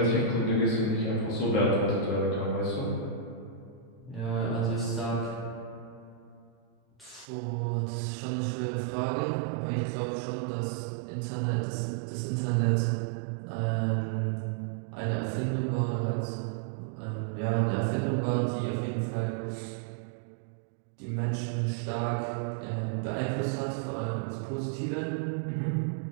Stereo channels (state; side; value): drops out; left; at 7.2 s